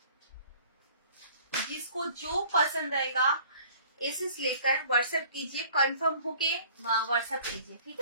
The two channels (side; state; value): both; inverted; correlation -0.51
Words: जिसको जो पसंद आएगा एसेस लेकर व्हाट्सएप कीजिए, कंफर्म होके व्हाट्सएप कीजिए, ठीक